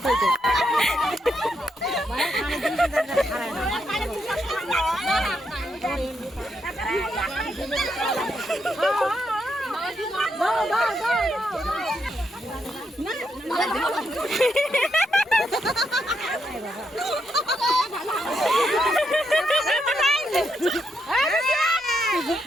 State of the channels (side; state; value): both; normal; correlation 0.80